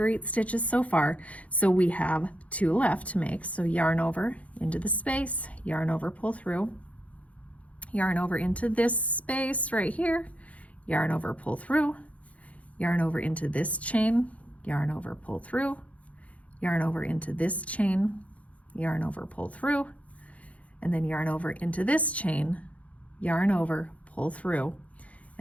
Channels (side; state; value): right; late; 0.066 ms